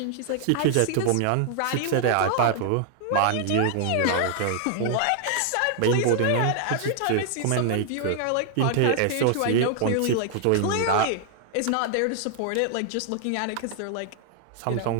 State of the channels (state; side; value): different; both; correlation -0.01